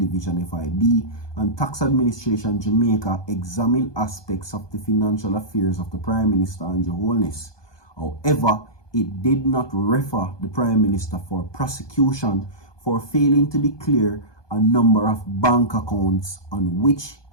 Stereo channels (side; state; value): right; late; 1.2 ms